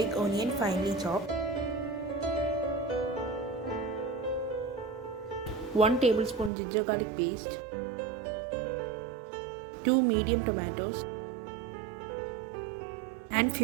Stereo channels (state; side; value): drops out; left; at 6.5 s